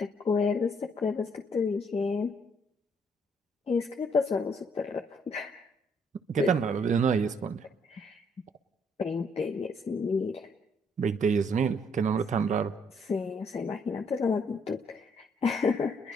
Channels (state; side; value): normal; both; correlation 0.68